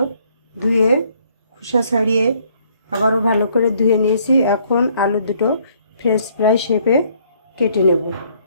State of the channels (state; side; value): inverted; both; correlation -0.65